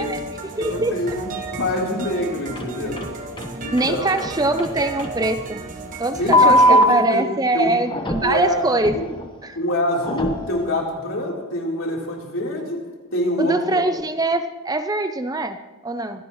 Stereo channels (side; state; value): both; normal; correlation 0.31